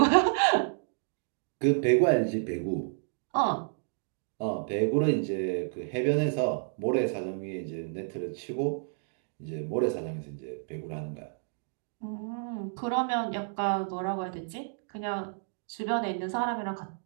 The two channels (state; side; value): silent; left; digital silence